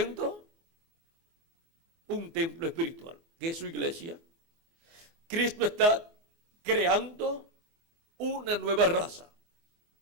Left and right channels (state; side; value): late; left; 24 ms